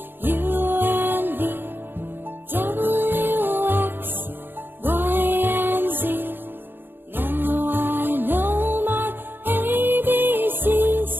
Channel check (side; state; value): left; late; 0.099 ms